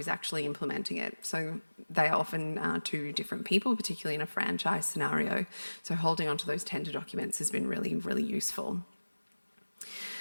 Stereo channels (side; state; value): both; inverted; correlation -1.00